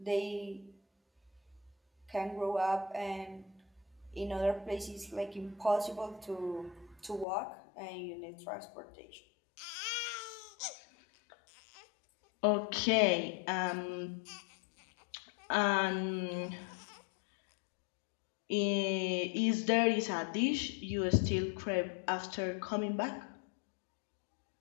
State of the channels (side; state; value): right; drops out; at 7.2 s